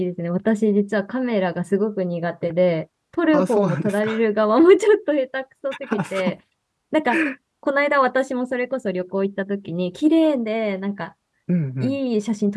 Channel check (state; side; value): identical; both; correlation 1.00